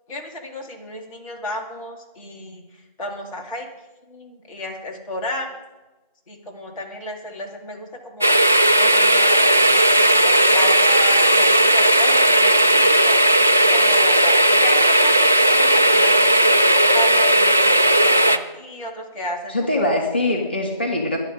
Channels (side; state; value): both; inverted; correlation -0.78